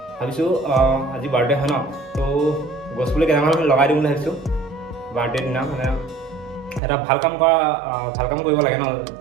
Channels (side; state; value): left; drops out; at 6.8 s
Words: ভাবিছো আজি বাৰ্থডে হয় ন তো গছপুলি কেইটামান লগাই দিম বুলি ভাবিছো বাৰ্থডে দিনা মানে এটা ভাল কাম কৰিব লাগে ন